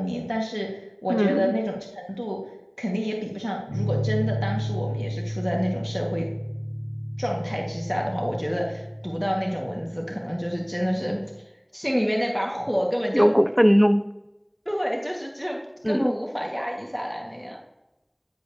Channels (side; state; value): both; identical; correlation 1.00